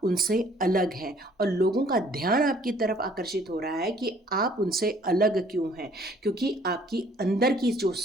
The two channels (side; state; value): both; normal; correlation 0.58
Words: उनसे अलग हैं और लोगों का ध्यान आपकी तरफ आकर्षित हो रहा है कि आप उनसे अलग क्यों हैं, क्योंकि आपकी अंदर की जो